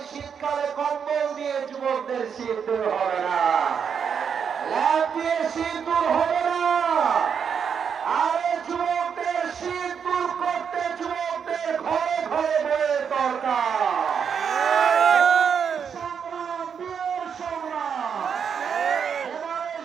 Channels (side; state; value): left; quieter; 7.1 dB